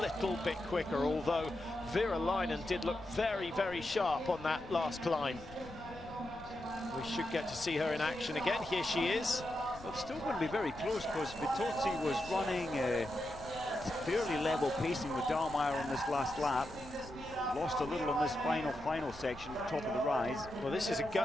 bit quicker, although Virolainen did look very, very sharp on that last climb. We should get to see her in action again. Here she is. Well, it's still going to be very close because Vitozzi was running fairly level pacing with Dalmar on this last lap. Lost a little on this final section, top of the rise. Well, this is a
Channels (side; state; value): left; noise; rumble, 18 dB below the sound